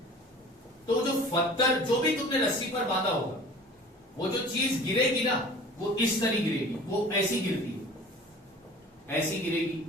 तो जो पत्थर जो भी तुमने रस्सी पर बांधा होगा, वो जो चीज गिरेगी ना, वो इस तरह गिरेगी, वो ऐसी गिरती है, ऐसी गिरेगी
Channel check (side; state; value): both; normal; correlation 0.44